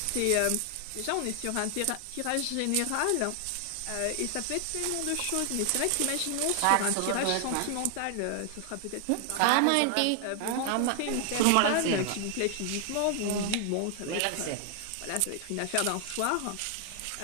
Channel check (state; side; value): different; both; correlation 0.00